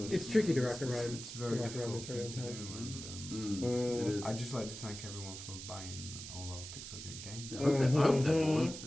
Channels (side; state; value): right; noise; hiss, 10 dB below the sound